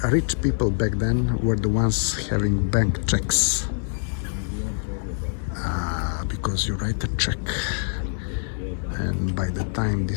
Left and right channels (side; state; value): right; silent; 62 dB below the other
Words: Rich people back then were the ones having bank checks. Because you write a check, and by the time